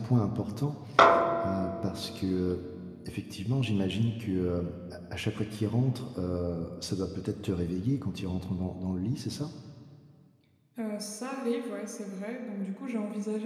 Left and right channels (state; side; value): identical; both; correlation 1.00